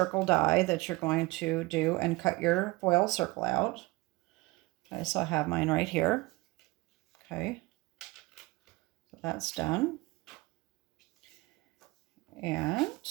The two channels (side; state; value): left; quieter; 22.1 dB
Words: die that you're going to do and cut your foil circle out. Okay, so I have mine right here. Okay, so that's done. And